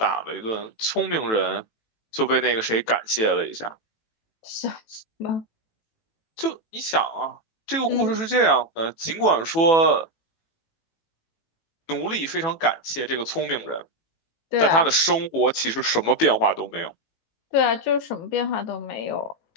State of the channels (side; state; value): right; late; 18 ms